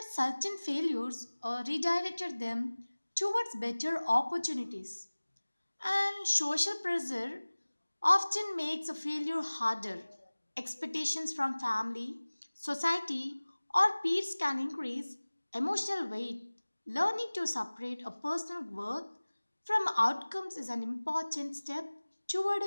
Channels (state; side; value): inverted; both; correlation -1.00